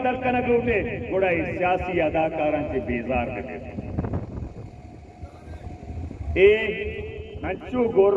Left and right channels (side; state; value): both; identical; correlation 1.00